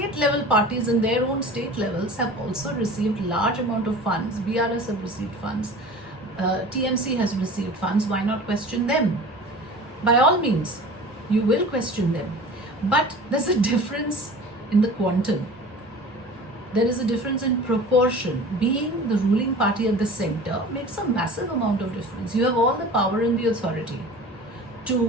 level parties in their own state levels have also received large amount of funds. BRS have received funds. TMC has received funds. Why not question them? By all means, you will question them. But there's a difference in the quantum. There is a difference in proportion. Being the ruling party at the center makes a massive amount of difference. You have all the power and the authority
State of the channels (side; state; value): both; normal; correlation 0.40